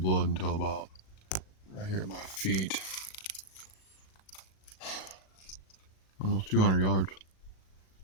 until about right here at my feet. Almost 200 yards.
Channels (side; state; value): right; late; 37 ms